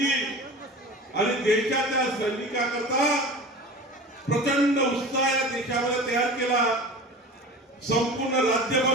आणि देशाच्या सैनिकांकरता प्रचंड उत्साह या देशामध्ये तयार केला. संपूर्ण राज्यभर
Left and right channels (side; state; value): both; normal; correlation 0.35